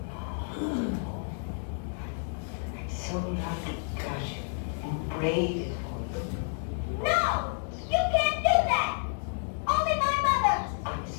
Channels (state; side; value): silent; right; 58 dB below the other